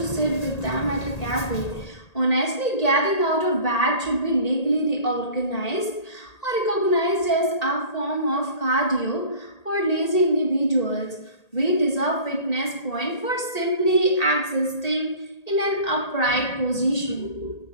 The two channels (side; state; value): right; late; 1.8 ms